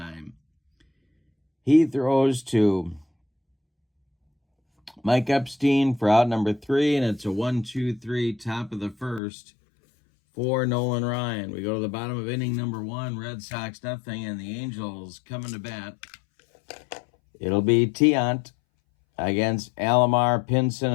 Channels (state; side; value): drops out; right; at 9.2 s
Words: He throws to Mike Epstein for out number 3, and it's a 1-2-3 top of the first for Nolan Ryan. We go to the bottom of inning number 1, Red Sox nothing, and the Angels coming to bat. It'll be Tiant against Alomar, Pinson,